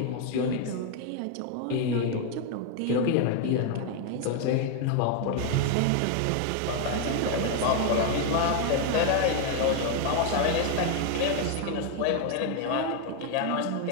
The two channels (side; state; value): both; different; correlation 0.01